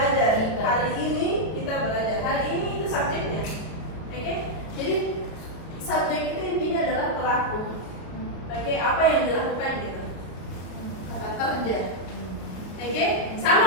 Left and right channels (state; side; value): late; right; 32 ms